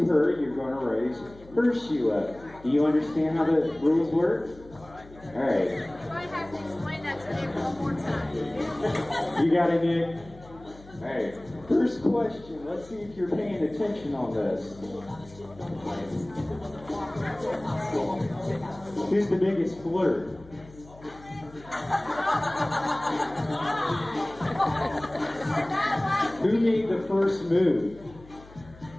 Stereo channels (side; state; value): left; noise; hum, 21 dB below the sound